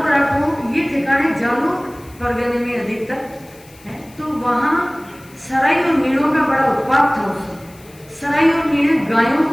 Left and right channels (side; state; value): left; noise; hiss, 25 dB below the sound